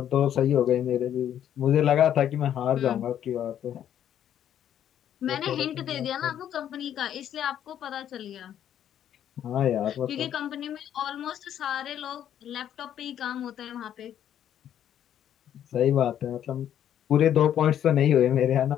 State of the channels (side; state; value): right; quieter; 10.3 dB